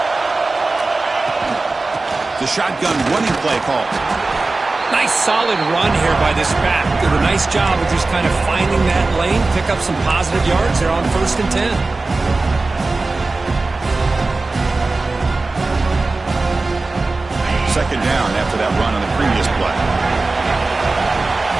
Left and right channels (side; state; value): left; quieter; 3.4 dB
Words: The shotgun running play call. Nice solid run here by this back. Did a nice job of just kind of finding that lane, pick up some positive yards. They're on 1st and 10. Second down after that run on the previous play.